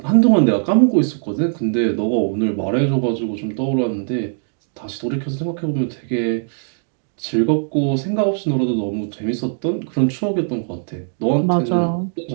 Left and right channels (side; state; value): left; silent; digital silence